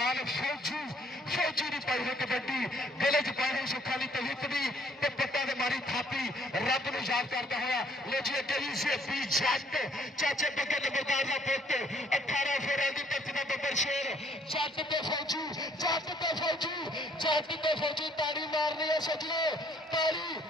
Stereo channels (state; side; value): normal; both; correlation 0.63